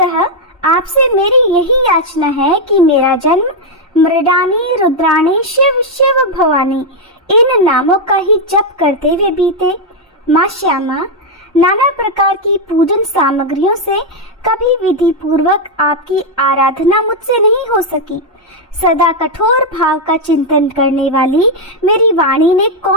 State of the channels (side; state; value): both; normal; correlation 0.00